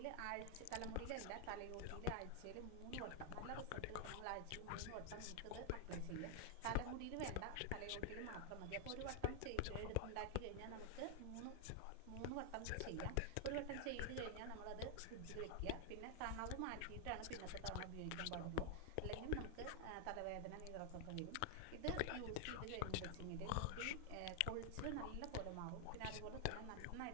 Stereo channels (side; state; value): both; different; correlation 0.00